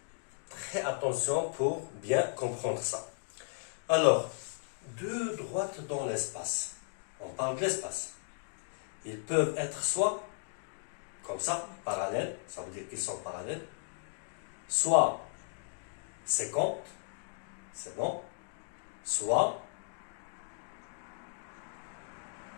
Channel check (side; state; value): right; silent; digital silence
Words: très attention pour bien comprendre ça. Alors, deux droites dans l'espace. On parle de l'espace. Ils peuvent être soit comme ça, parallèles, ça veut dire qu'ils sont parallèles, soit 50, c'est bon, soit